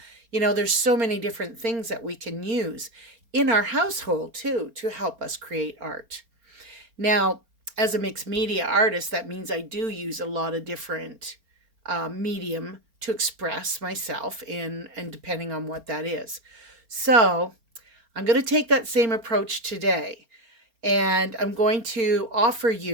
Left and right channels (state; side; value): late; left; 4.3 ms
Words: There's so many different things that we can use in our household too to help us create art. Now, as a mixed media artist, that means I do use a lot of different medium to express myself in, and depending on what that is. So I'm going to take that same approach today. And I'm going to offer